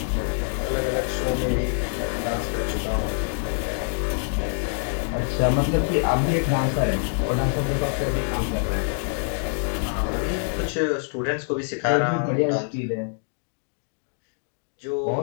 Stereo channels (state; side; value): silent; right; digital silence